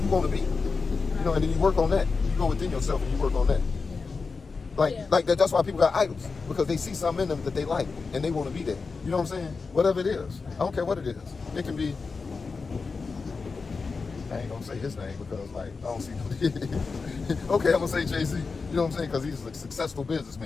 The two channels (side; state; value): right; quieter; 4.6 dB